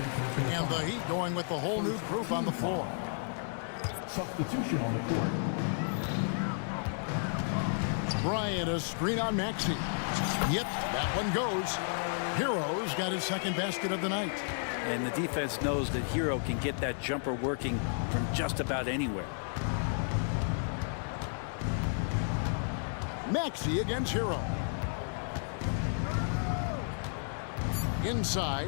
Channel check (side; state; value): right; silent; digital silence